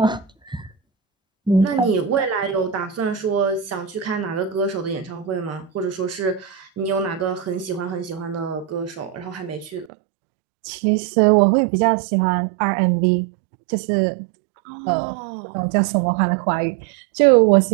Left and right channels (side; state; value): left; drops out; at 9.9 s